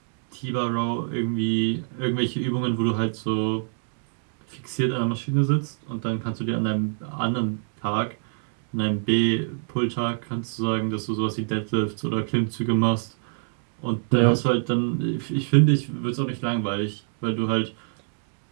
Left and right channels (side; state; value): left; silent; digital silence